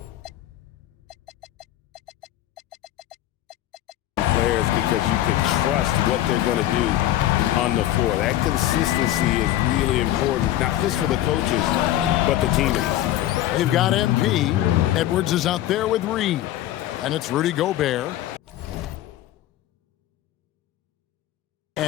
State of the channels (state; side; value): quieter; right; 13.6 dB